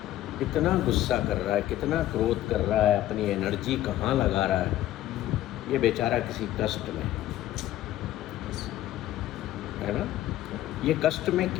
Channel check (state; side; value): quieter; right; 13.8 dB